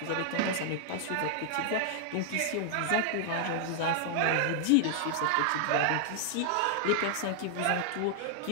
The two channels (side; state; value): both; different; correlation -0.01